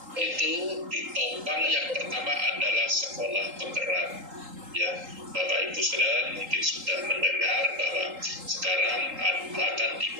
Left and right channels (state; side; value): late; left; 3.8 ms